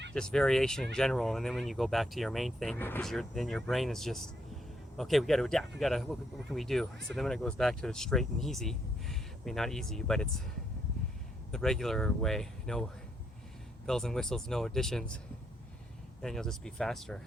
just variation in general, and then when you go back to your main thing, because then your brain is just, okay, we got to adapt, what can we do? So then when it goes back to straight and easy, I mean, not easy, but it's the regular way, no bells and whistles, no additions, then you'll just be faster.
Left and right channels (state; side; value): normal; both; correlation 0.75